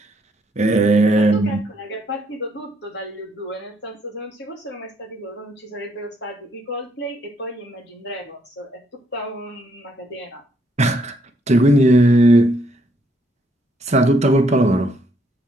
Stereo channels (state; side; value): normal; both; correlation 0.71